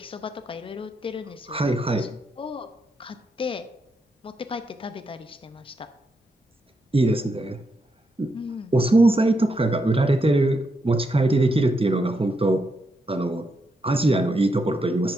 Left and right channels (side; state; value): both; normal; correlation 0.81